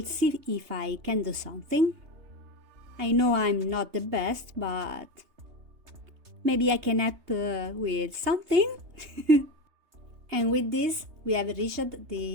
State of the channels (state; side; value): late; left; 3.3 ms